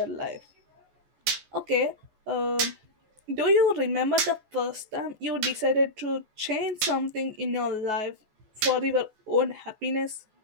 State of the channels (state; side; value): late; left; 14 ms